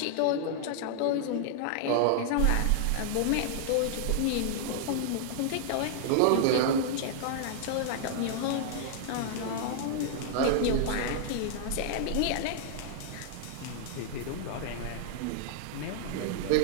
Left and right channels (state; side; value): different; both; correlation -0.01